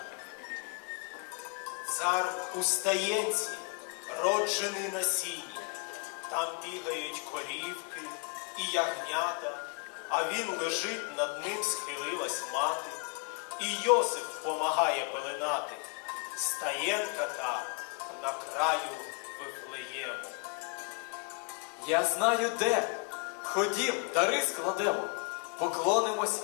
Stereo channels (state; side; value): quieter; right; 33.6 dB